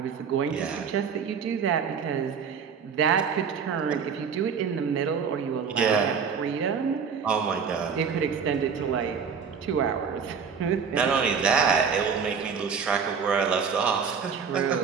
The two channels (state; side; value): quieter; left; 6.3 dB